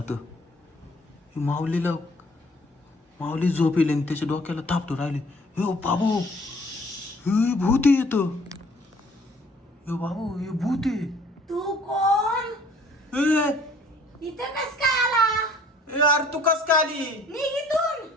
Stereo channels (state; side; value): normal; both; correlation 0.56